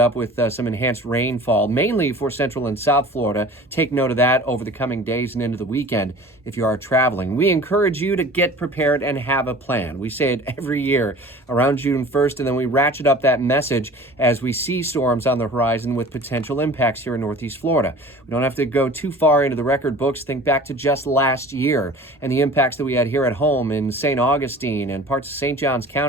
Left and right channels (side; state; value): both; normal; correlation 0.42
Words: with some enhanced rainfall, mainly for central and south Florida. Take note of that over the coming days and into the weekend if you are traveling. We encourage you to get prepared and have a plan. We say it every year around June 1st, and then we ratchet up that message as we see storms on the horizon with potential impacts here in Northeast Florida. We don't have to go too far into the record books. Think back to just last year and the impacts that we had here at home in St. Augustine and parts of St. Johns